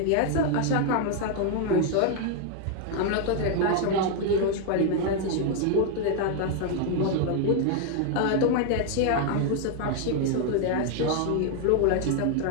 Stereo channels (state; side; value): different; both; correlation 0.00